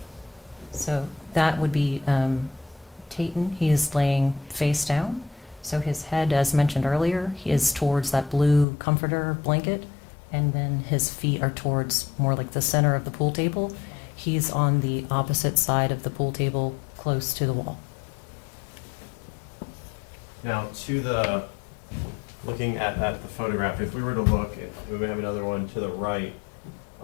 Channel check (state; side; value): drops out; right; at 8.7 s